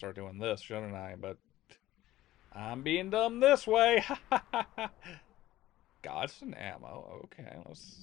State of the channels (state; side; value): quieter; right; 15.4 dB